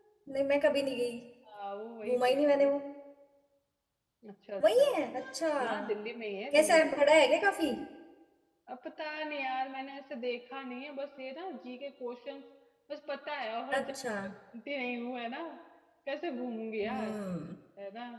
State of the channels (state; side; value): identical; both; correlation 1.00